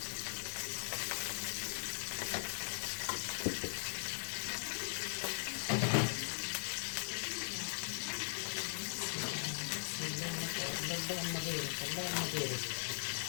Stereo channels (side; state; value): right; silent; digital silence